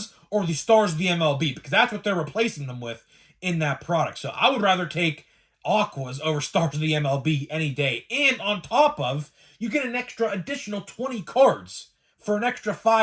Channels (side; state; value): both; identical; correlation 1.00